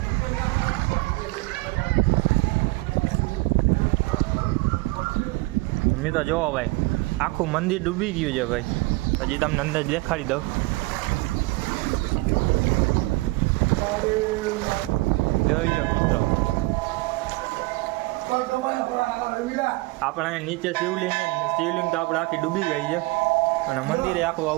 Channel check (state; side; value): quieter; left; 23.2 dB